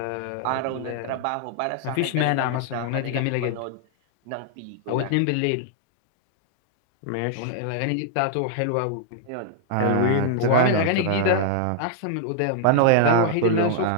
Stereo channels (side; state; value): both; different; correlation 0.00